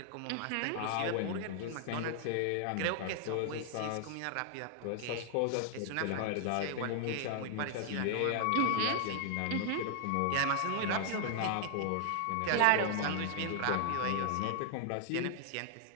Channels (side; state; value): both; different; correlation 0.00